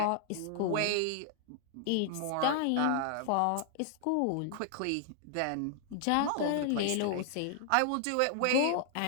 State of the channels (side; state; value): both; different; correlation 0.00